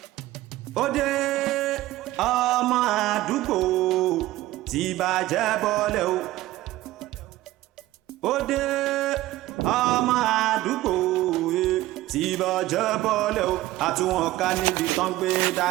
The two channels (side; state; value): left; quieter; 16.5 dB